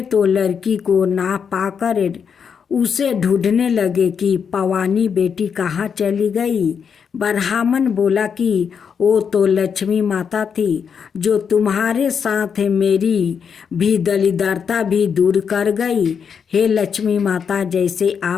तो लड़की को ना पाकर उसे ढूंढने लगे कि पवानी बेटी कहाँ चली गई। ब्राह्मण बोला कि वो तो लक्ष्मी माता थी, जो तुम्हारे साथ मेरी भी दलिद्रता भी दूर कर गई। हे लक्ष्मी माता, जैसे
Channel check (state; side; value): quieter; right; 6.8 dB